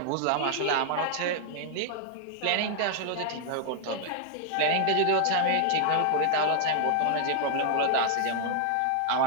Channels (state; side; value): different; both; correlation 0.00